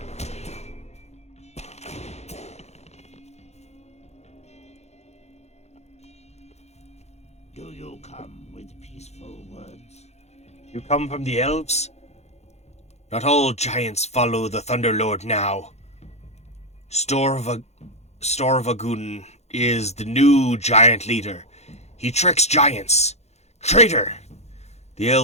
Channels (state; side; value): late; right; 0.32 ms